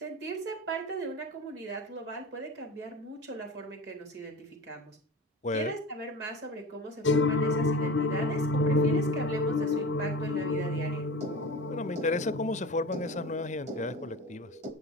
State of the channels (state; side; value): normal; both; correlation 0.32